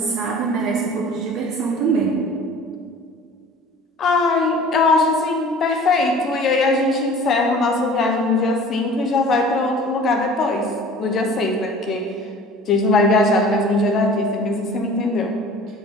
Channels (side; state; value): both; normal; correlation 0.45